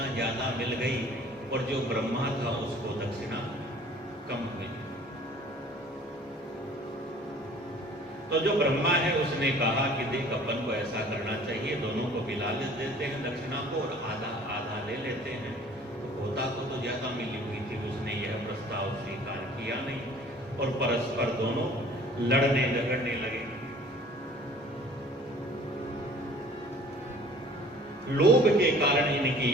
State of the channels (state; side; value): normal; both; correlation 0.50